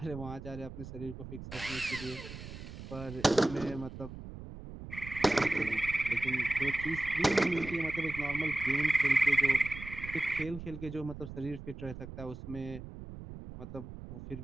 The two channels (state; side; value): noise; right; rumble, 11 dB below the sound